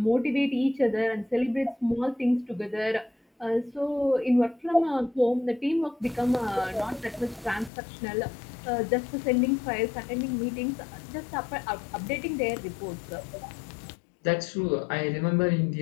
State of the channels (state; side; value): drops out; right; at 7.7 s